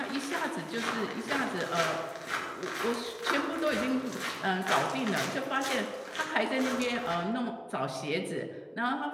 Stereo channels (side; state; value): both; identical; correlation 1.00